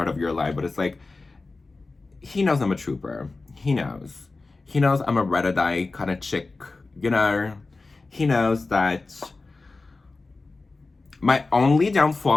of your life, but it's like, he knows I'm a trooper. He knows. He knows I'm a red-eye kind of chick, you know? He knows that my only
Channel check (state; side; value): quieter; right; 3.6 dB